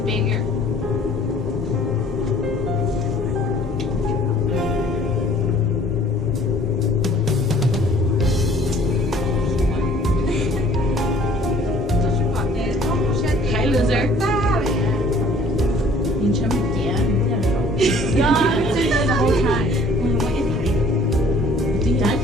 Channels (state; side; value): normal; both; correlation 0.55